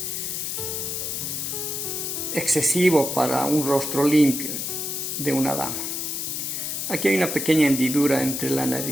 excesivo para un rostro limpio de una dama. Aquí hay una pequeña hendidura entre la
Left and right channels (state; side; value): noise; left; hiss, 3 dB below the sound